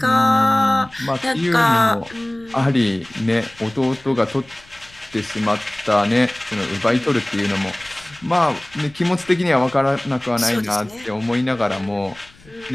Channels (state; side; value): noise; left; rumble, 25 dB below the sound